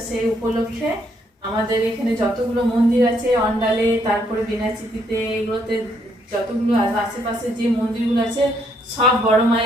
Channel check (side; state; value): both; normal; correlation 0.71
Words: সেই উপলক্ষে আমাদের এখানে যতগুলো মন্দির আছে অন্ডালে, তারপরে বিনাচিতিতে, এগুলোতে যতগুলো আশেপাশে যে মন্দিরগুলো আছে সব বড়